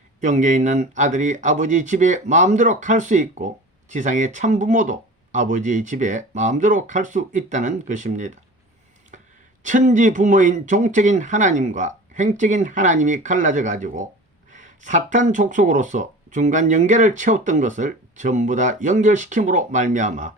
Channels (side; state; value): both; normal; correlation 0.38